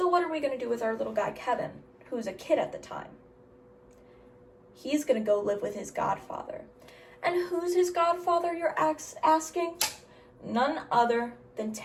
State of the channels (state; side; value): identical; both; correlation 1.00